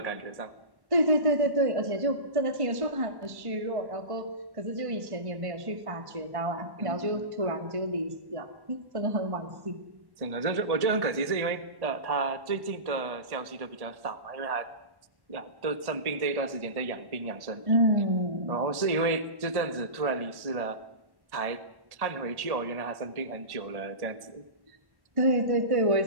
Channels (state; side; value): late; left; 1.1 ms